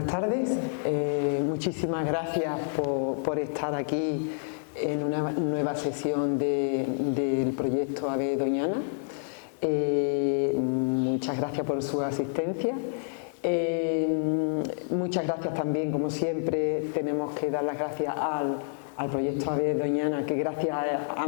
tardes, muchísimas gracias por estar aquí en una nueva sesión del proyecto AVE Doñana. Muchas gracias por su asistencia. Muchas gracias también, como siempre, tenemos que dar las gracias al proyecto AVE Doñana, que gracias a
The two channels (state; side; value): silent; right; 59 dB below the other